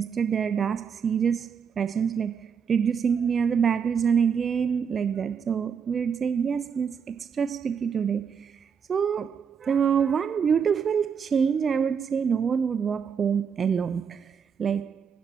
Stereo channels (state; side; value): quieter; left; 6.8 dB